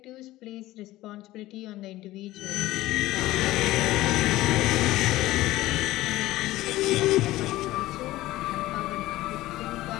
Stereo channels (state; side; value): quieter; right; 16.8 dB